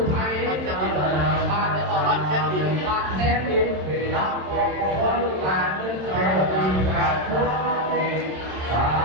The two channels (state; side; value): late; left; 27 ms